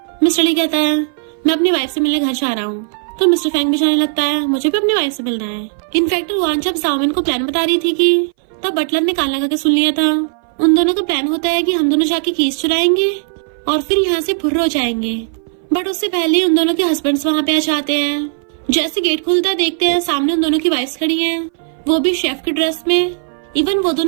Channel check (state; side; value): silent; left; 61 dB below the other